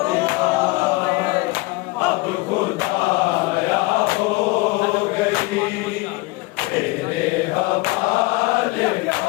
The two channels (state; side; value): quieter; right; 22.7 dB